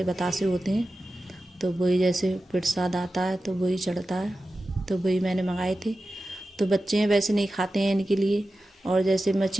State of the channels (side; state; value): both; normal; correlation 0.94